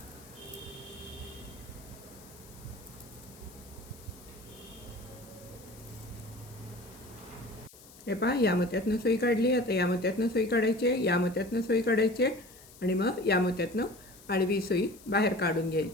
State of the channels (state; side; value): noise; left; hiss, 21 dB below the sound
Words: हे पहा, या मोत्यातनं सुई काढली. आता या मोत्यातनं सुई काढायची, या मोत्यातनं सुई काढायची आणि मग या मोत्यातनं आडवी सुई बाहेर काढून